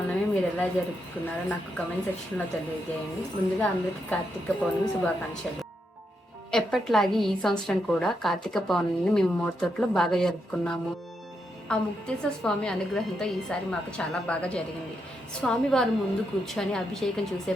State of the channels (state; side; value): normal; both; correlation 0.82